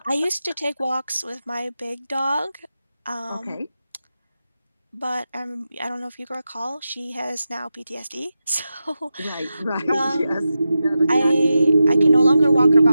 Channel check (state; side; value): inverted; both; correlation -0.91